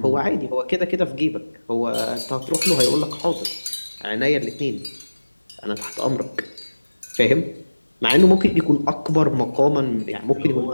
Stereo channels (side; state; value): both; inverted; correlation -1.00